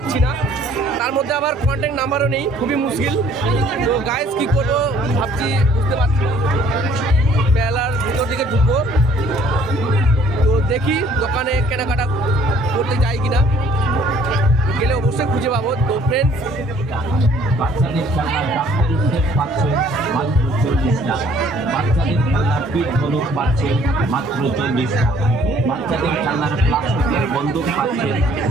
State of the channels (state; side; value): normal; both; correlation 0.58